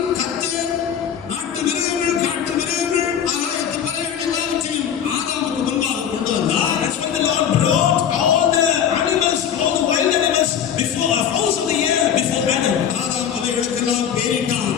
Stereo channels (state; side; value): quieter; right; 8.8 dB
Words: கர்த்தர் நாட்டு மிருகங்கள், காட்டு மிருகங்கள், ஆகாயத்து பறவைகள் எல்லாவற்றையும் ஆதாமுக்கு முன்பாக கொண்டு வந்தார். That's when the Lord brought all the animals, all the wild animals before a house of the year before Adam. Adam அவைகளுக்கெல்லாம் பேரிட்டான்.